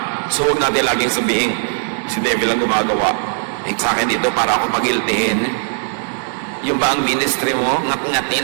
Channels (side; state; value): left; silent; digital silence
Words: So huwag natin laging sabihin, si devil ang gumagawa. Sa akin dito para ako pag-guiltihin. Yung ba ang ministry mo,